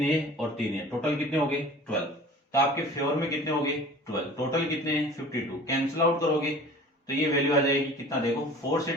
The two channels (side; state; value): both; normal; correlation 0.43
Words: ए और 3 ईयर, टोटल कितने हो गए 12। तो आपके फेवर में कितने हो गए 12, टोटल कितने हैं 52। कैंसिल आउट करोगे तो ये वैल्यू आ जाएगी कितना, देखो 4 से